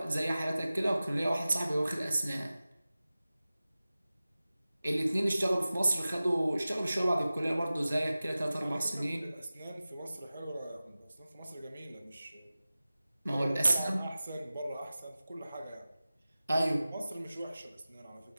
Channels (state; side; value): inverted; both; correlation -0.96